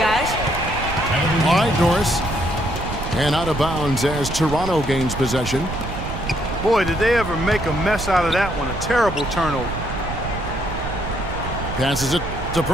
All right, Norris. And out of bounds as Toronto gains possession. Boy, did they ever make a mess out of that one. A terrible turnover. Passes it to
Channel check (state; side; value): noise; right; rumble, 7 dB below the sound